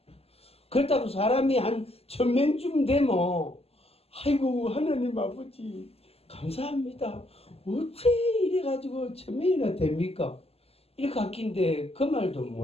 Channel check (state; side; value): late; right; 0.29 ms